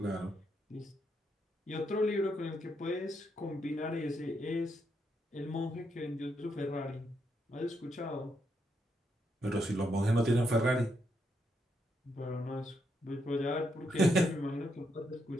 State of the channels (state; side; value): normal; both; correlation 0.79